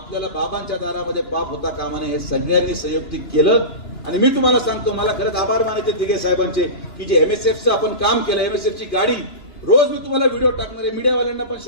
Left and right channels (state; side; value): late; right; 2.9 ms